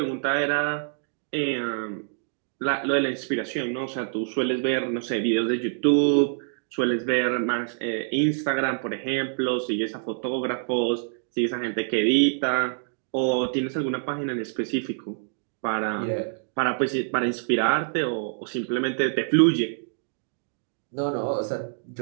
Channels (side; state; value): left; silent; digital silence